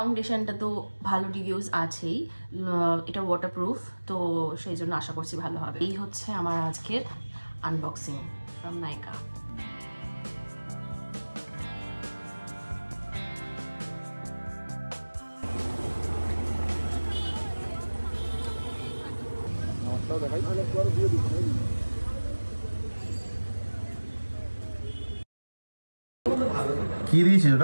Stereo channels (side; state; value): both; inverted; correlation -1.00